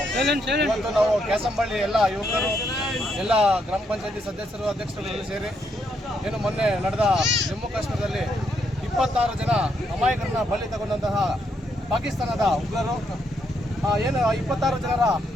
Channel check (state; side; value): normal; both; correlation 0.76